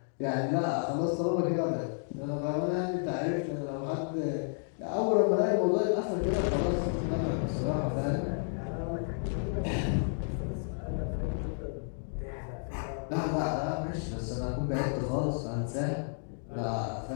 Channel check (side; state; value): right; silent; digital silence